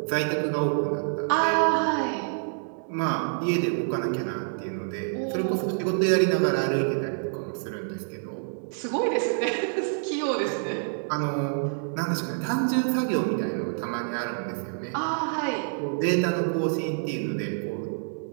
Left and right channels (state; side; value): silent; left; digital silence